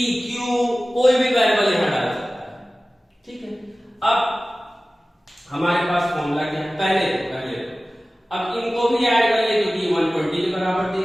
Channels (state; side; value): normal; both; correlation 0.97